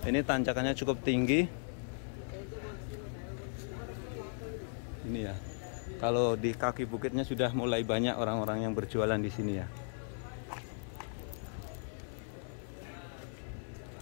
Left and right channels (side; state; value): right; silent; 53 dB below the other